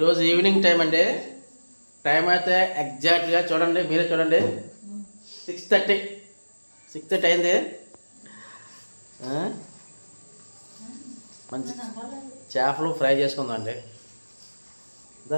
evening time అండి. Time అయితే ఎగ్జాక్ట్గా చూడండి, మీరే చూడండి, 6:30 అయింది. మంచి చేపలు ఫ్రై చేసుకుందామండి.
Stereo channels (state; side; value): inverted; both; correlation -1.00